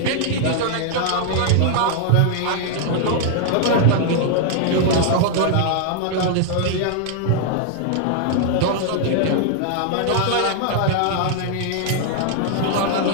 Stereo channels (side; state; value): both; different; correlation 0.00